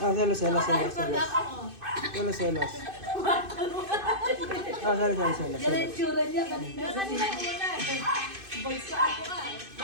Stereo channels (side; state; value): left; late; 2.5 ms